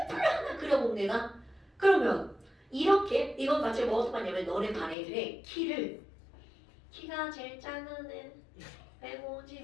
하나 그려본 내가 그러면 이렇게 이건 마치 뭐 어떻게 하냐면 너네 반 애들의 키가 제일 작은 애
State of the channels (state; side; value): drops out; right; at 5.0 s